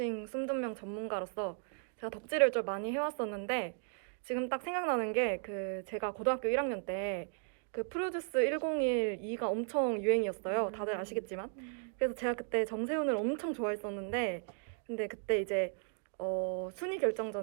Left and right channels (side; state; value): left; silent; 54 dB below the other